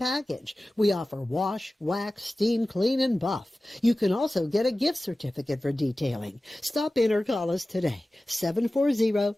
We offer wash, wax, steam, clean, and buff. You can also get a gift certificate for detailing. Stop in or call us today,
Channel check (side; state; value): both; normal; correlation 0.96